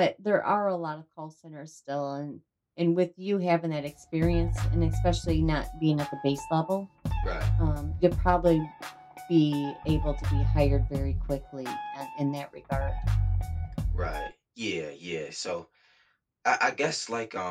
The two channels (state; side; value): identical; both; correlation 1.00